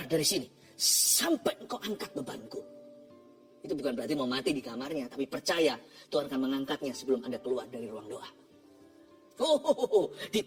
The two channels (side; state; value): both; identical; correlation 1.00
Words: dari sini sampai engkau angkat bebanku. Itu bukan berarti mau mati di kamarnya, tapi percaya Tuhan akan mengangkatnya sebelum Anda keluar dari ruang doa.